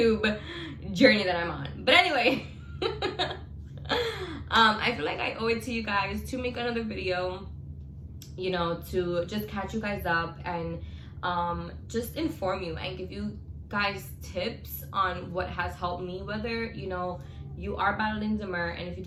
journey that I'm on. But anyway, I feel like I owe it to you guys to make another video, you know, to just catch you guys up and just inform you and give you guys tips on what has helped me, whether, you know, you are battling D-MER. And if you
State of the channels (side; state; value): both; identical; correlation 1.00